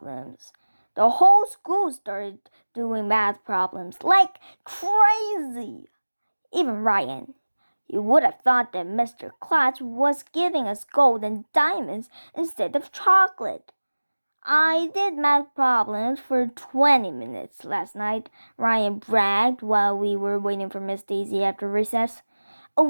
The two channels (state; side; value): inverted; both; correlation -1.00